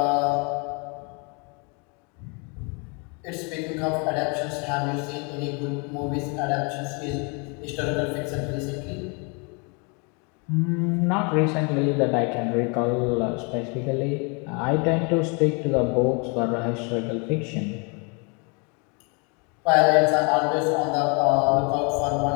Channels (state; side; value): quieter; right; 33.5 dB